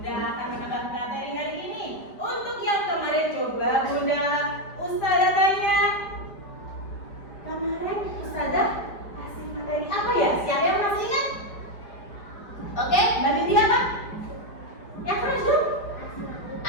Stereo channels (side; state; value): right; late; 5.0 ms